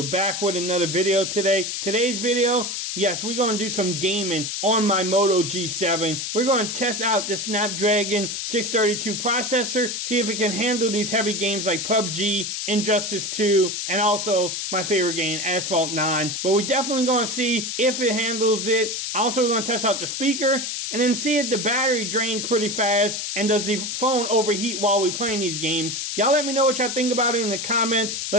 back with another video today. Today's video, yes, we're going to do some gaming on my Moto G7. We're going to test out the Snapdragon 632 processor, see if it can handle these heavy games like PUBG, Injustice 2, and also my favorite game, Asphalt 9. But we're definitely going to see if it handles it. Also, we're going to test out the speaker, and then see if the battery drains pretty fast, and does the phone overheat while we're playing these games. Y'all let me know what y'all think about it in the comments.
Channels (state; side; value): noise; left; hiss, 3 dB below the sound